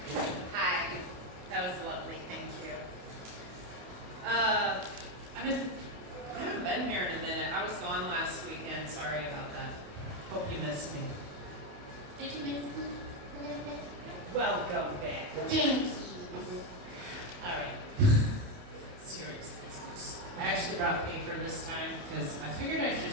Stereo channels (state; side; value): late; left; 28 ms